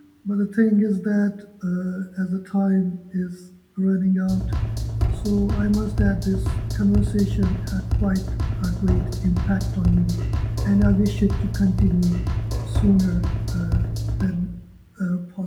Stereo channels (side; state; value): both; identical; correlation 1.00